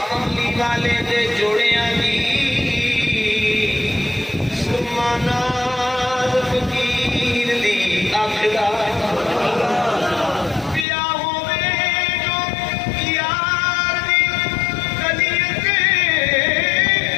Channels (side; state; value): right; drops out; at 10.9 s